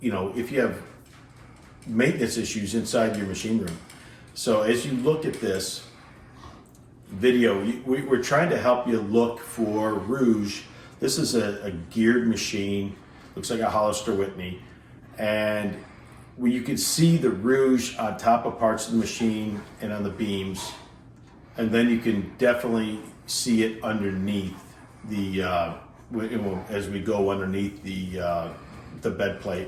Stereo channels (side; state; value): both; identical; correlation 1.00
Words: you have maintenance issues inside your machine room. So as you look at this video, we're trying to help you look for rouge. This is a geared machine, looks like a Hollister Whitney, and you can see the rouge on top of parts of the machine and on the beams, and then you can definitely see it underneath the as we go underneath the bed